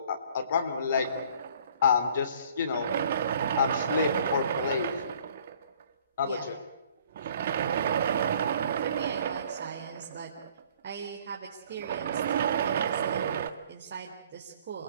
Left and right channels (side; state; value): both; inverted; correlation -0.56